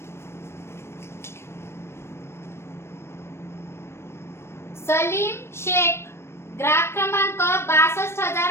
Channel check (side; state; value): right; late; 0.12 ms